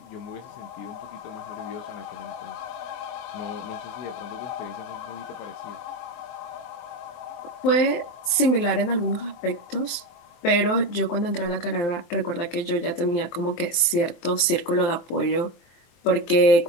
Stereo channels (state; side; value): late; right; 23 ms